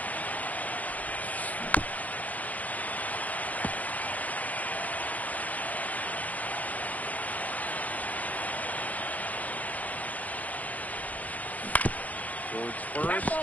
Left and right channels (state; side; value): late; right; 0.075 ms